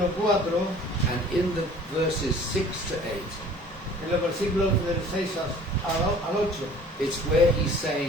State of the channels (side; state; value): both; normal; correlation 0.49